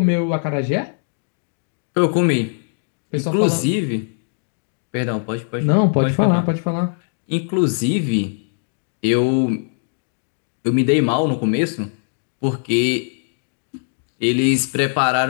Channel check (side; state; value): right; silent; digital silence